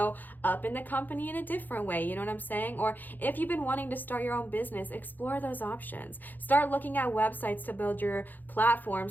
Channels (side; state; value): right; late; 0.086 ms